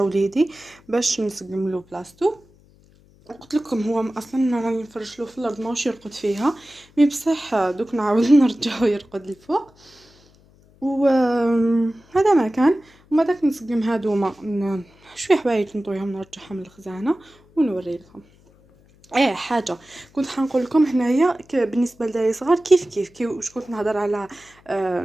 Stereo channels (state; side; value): noise; left; hum, 29 dB below the sound